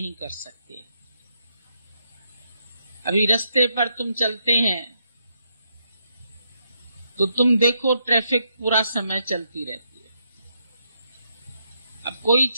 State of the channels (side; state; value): both; inverted; correlation -0.79